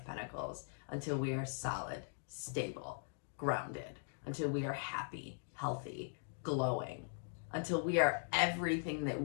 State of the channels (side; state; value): right; silent; digital silence